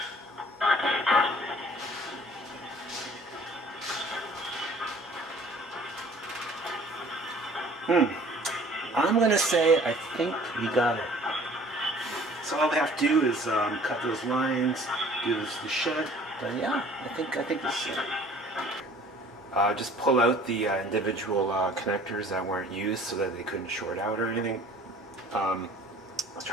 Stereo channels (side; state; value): both; normal; correlation 0.52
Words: I'm going to say I think we got it. So all we have to do is cut those lines, do the shed. But yeah, I think this is it. Just pull out the individual connectors that weren't used so that they couldn't short out or anything. I was